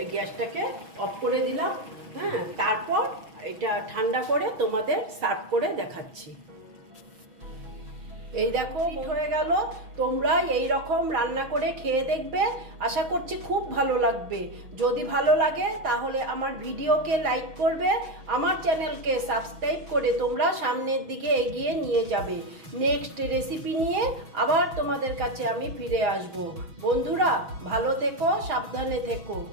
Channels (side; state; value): left; late; 6.2 ms